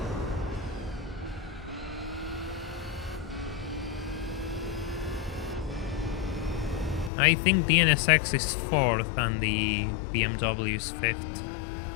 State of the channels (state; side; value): drops out; right; at 7.1 s